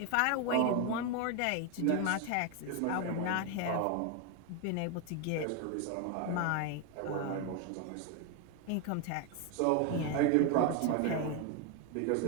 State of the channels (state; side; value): different; both; correlation 0.01